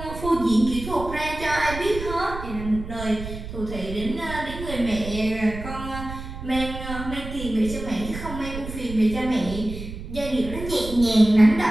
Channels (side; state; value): right; noise; rumble, 9 dB below the sound